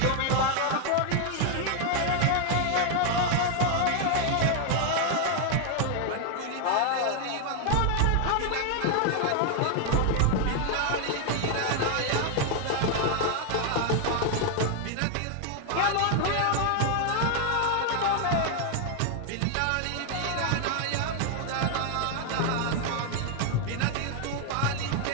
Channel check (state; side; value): different; both; correlation 0.00